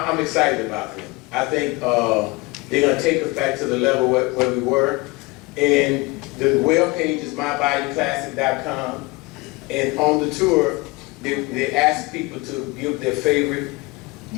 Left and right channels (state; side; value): quieter; right; 24.5 dB